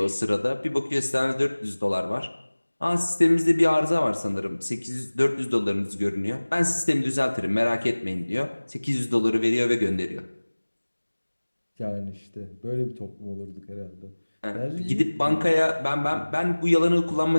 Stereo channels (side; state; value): both; inverted; correlation -1.00